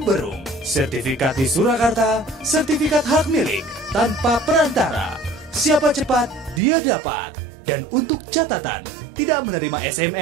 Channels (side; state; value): left; drops out; at 6.6 s